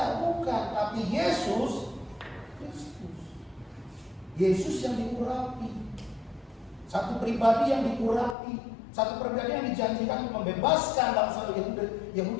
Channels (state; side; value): drops out; right; at 8.3 s